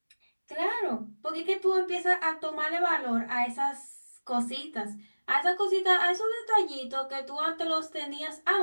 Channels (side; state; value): both; inverted; correlation -1.00